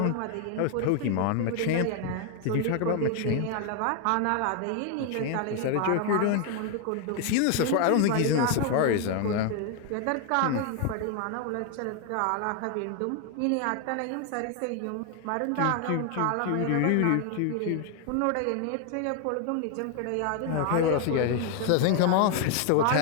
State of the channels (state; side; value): different; both; correlation 0.00